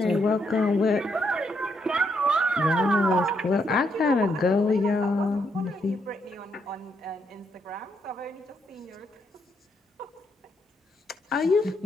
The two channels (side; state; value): both; normal; correlation 0.77